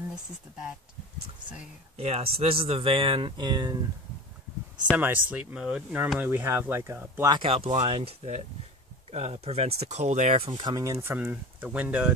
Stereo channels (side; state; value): both; normal; correlation 0.33